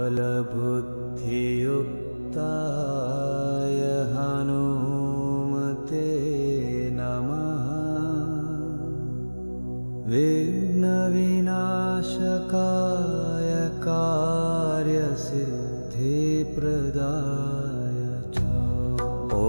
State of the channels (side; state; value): both; inverted; correlation -1.00